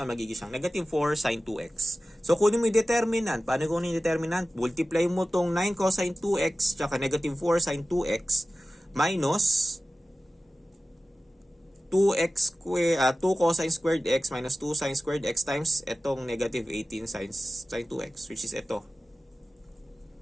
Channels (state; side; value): normal; both; correlation 0.95